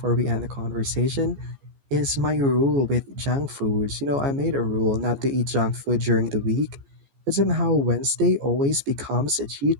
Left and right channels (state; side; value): late; left; 14 ms